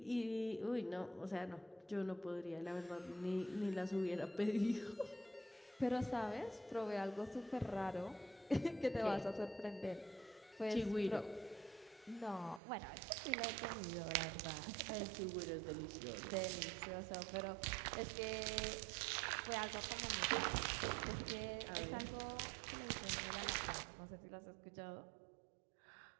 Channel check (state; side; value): drops out; left; at 12.6 s